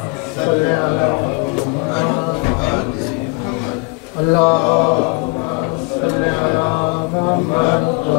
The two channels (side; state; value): right; quieter; 29.7 dB